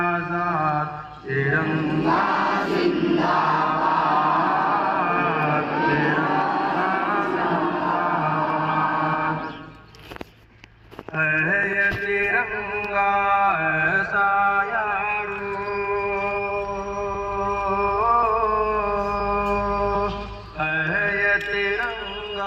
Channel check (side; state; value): both; identical; correlation 1.00